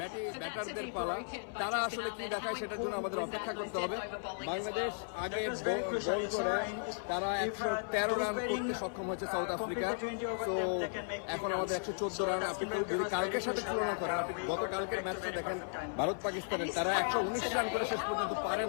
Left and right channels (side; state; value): right; silent; 54 dB below the other